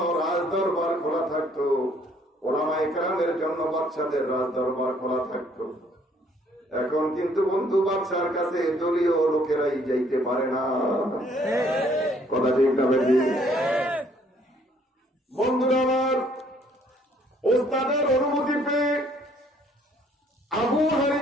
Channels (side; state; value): both; normal; correlation 0.63